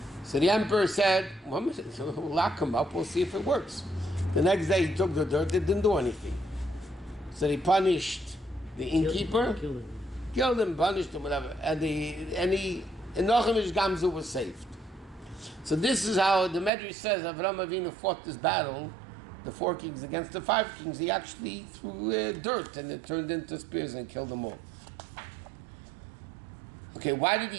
So the emperor said, well, we'll lock him up, we'll see if it works. The next day he took the dirt, it didn't do anything. So he punished the innkeeper, killed him, punished him, whatever, and Nochem Gamzu was saved. So this is how the Medrash says Avraham Avinu fought this battle, the 4 kings against the 5 kings. He actually threw dirt and it turned into spears and killed them all. Okay, why did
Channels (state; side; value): drops out; left; at 16.7 s